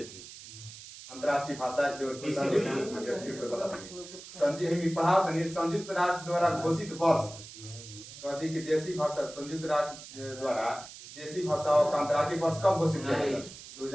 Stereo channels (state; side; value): noise; right; hiss, 15 dB below the sound